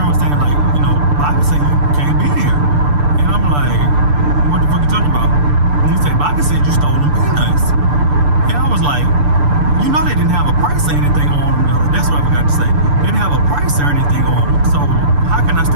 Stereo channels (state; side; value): late; left; 6.8 ms